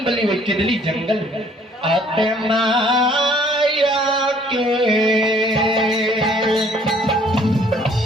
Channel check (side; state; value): both; normal; correlation 0.59